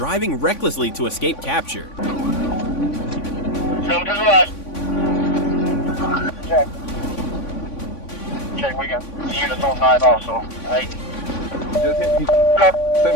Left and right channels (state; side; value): late; right; 3.5 ms